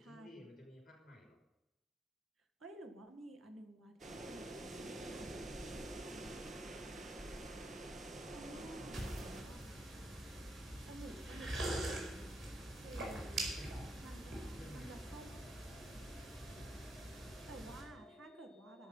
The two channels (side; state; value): both; normal; correlation 0.79